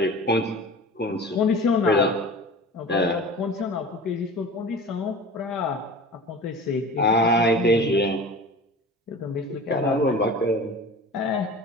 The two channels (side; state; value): both; normal; correlation 0.38